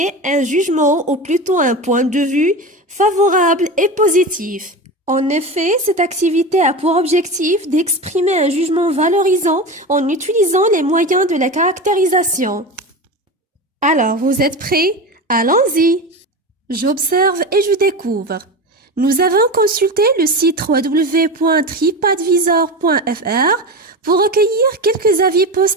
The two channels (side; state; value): both; normal; correlation 0.25